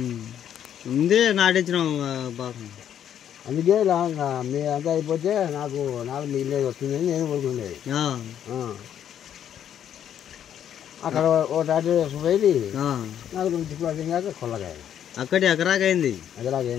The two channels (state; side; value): quieter; right; 9.8 dB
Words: ఉంది నాటించినాం బాగా అందుకే మీ అంతా అయిపోతే నాకు మిగిలేదు వస్తుందని నేను కోరుకునేది అక్కడ ఓ టాటా పోయి నాకు 2 చిక్కులు కాక కొల్లగాయ అక్కడి ఎకరాకైంది